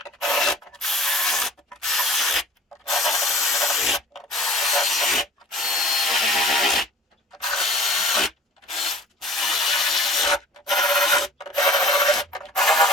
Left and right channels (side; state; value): both; normal; correlation 0.46